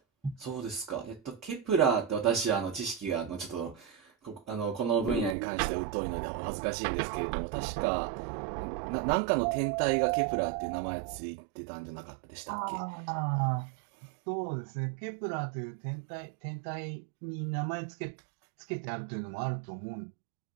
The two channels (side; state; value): left; drops out; at 5.4 s